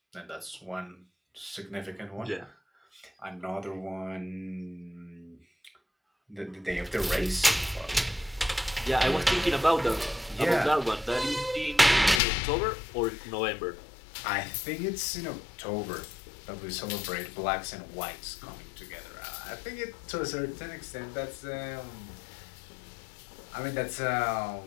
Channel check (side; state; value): right; drops out; at 12.2 s